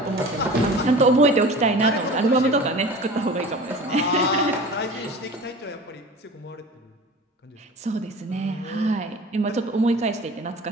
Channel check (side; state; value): both; normal; correlation 0.39